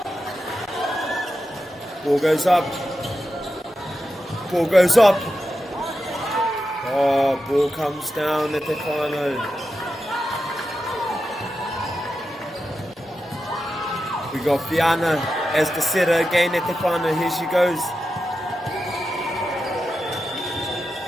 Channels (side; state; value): both; normal; correlation 0.89